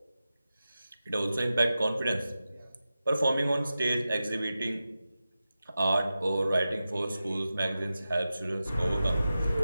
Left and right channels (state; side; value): inverted; both; correlation -0.93